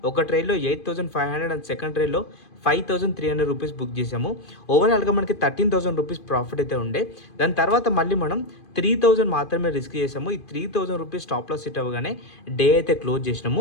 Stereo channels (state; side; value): late; right; 2.5 ms